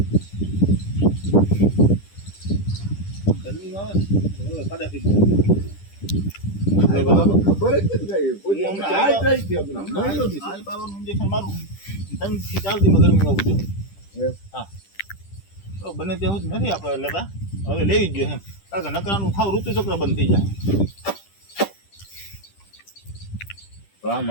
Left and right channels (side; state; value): right; late; 10 ms